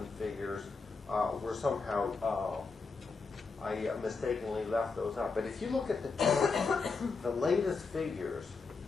figures were somehow, I mistakenly left those out. But if you look at the latest figures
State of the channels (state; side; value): quieter; right; 4.4 dB